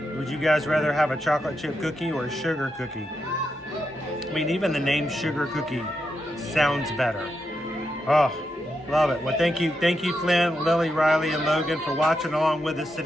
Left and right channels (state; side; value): normal; both; correlation 0.84